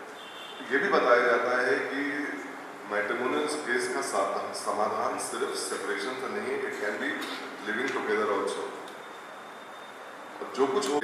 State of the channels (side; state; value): both; identical; correlation 1.00